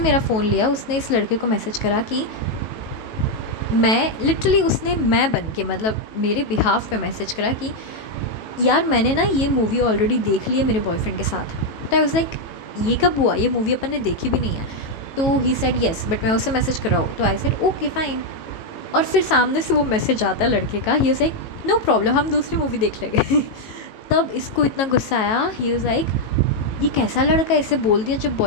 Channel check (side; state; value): right; late; 18 ms